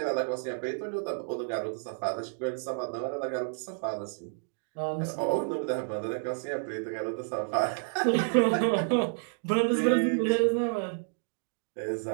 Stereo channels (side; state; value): left; silent; digital silence